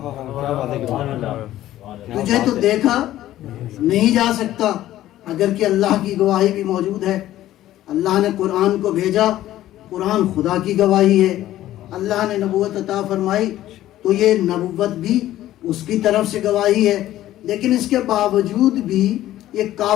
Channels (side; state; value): right; quieter; 13.9 dB